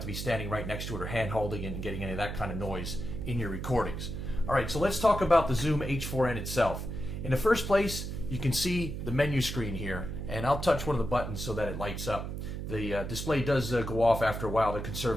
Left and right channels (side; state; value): right; noise; hum, 5 dB below the sound